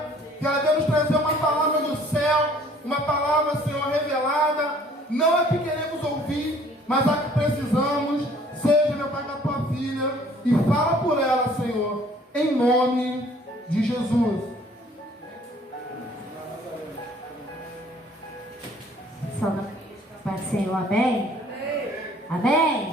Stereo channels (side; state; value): both; normal; correlation 0.56